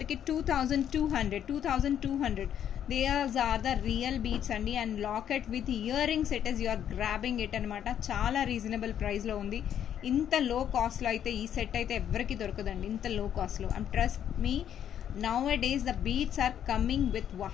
2200. These are the real beads అండి. And locket with earrings it is, you are grabbing it అనమాట. చాలా రీజనబుల్ ప్రైస్లో ఉంది. ఇంత లో కాస్ట్లో అయితే ఈ సెట్ అయితే ఎవరికి దొరకదండి, ఇంత లో కాస్ట్లో. And trust me, nowadays the beads are coming with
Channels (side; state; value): right; quieter; 9.7 dB